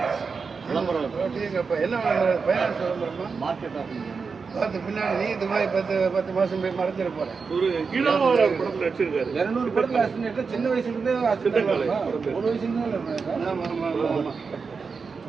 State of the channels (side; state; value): left; quieter; 5.1 dB